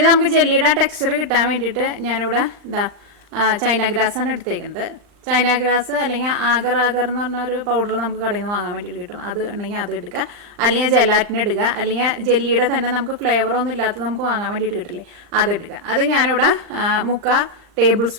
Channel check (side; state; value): left; late; 39 ms